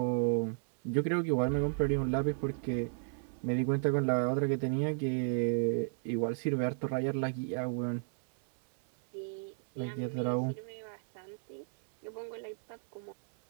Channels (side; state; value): left; silent; 55 dB below the other